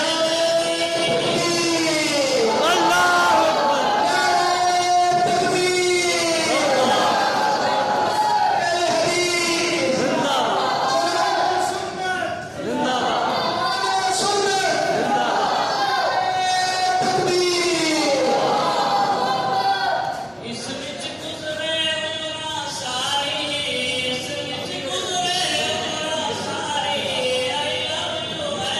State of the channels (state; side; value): identical; both; correlation 1.00